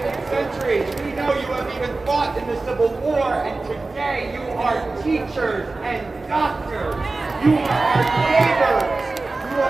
Centuries. We know you have even fought in the Civil War, and today you are teachers and doctors. You are our neighbors. You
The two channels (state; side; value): quieter; left; 3.5 dB